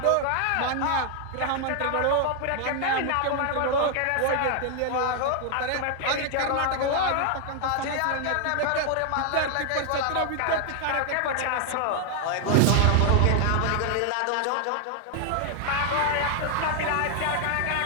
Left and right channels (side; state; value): both; different; correlation 0.00